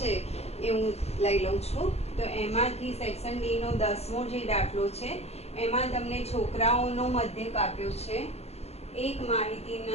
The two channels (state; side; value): late; right; 0.30 ms